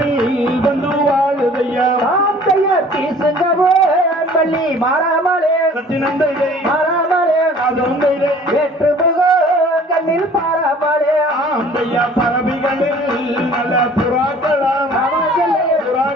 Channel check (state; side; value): normal; both; correlation 0.50